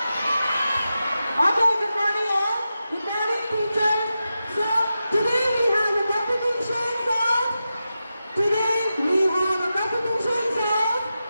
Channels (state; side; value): inverted; both; correlation -0.91